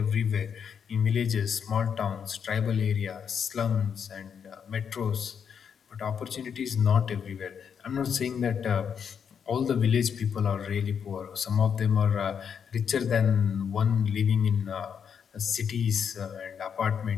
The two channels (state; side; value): quieter; right; 7.3 dB